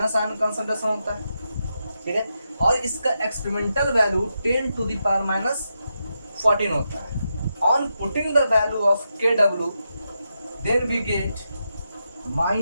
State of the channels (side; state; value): both; inverted; correlation -0.86